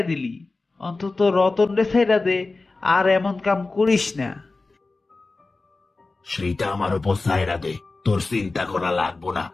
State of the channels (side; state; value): right; quieter; 3.5 dB